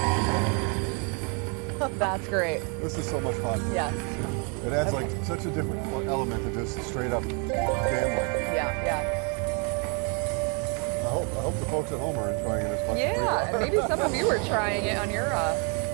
That's great. This is so much fun. Yes. It adds like such a different element to just straight up gambling. Yeah, yeah. I hope the folks at home are enjoying it as much as we Yeah, are. maybe some of you are trying it on your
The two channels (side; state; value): left; quieter; 36.3 dB